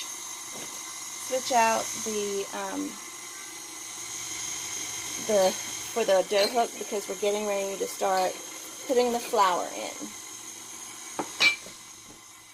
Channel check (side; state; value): both; identical; correlation 1.00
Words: out for the dough hook, because we're getting ready to start putting the flour in.